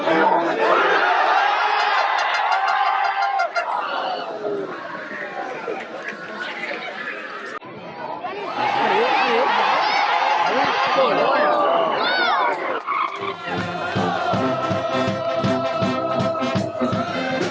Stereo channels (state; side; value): identical; both; correlation 1.00